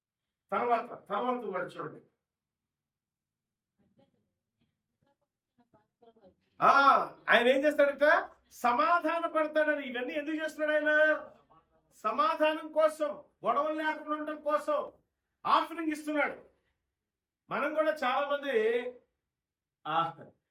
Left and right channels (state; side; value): identical; both; correlation 1.00